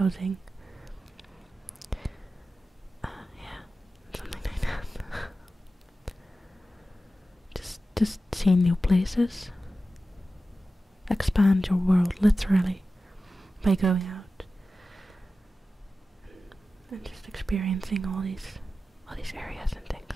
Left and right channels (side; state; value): both; normal; correlation 0.93